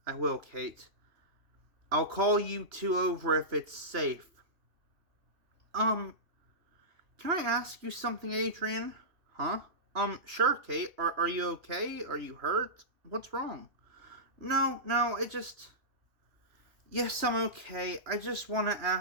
I will, Kate. I'll call you two over if it's safe. Can I ask you something, Adrian? Huh? Sure, Kate. Are you okay? Are you hurt? What's wrong? No, Yes, I'm okay. I just want to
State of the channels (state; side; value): late; left; 3.1 ms